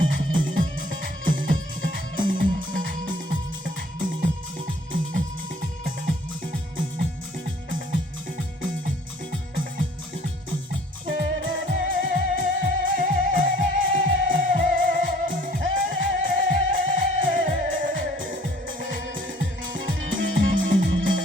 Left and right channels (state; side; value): normal; both; correlation 0.55